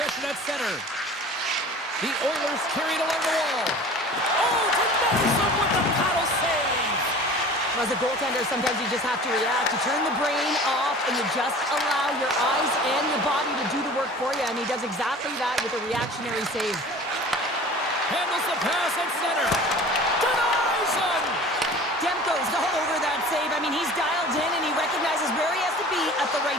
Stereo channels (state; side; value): normal; both; correlation 0.42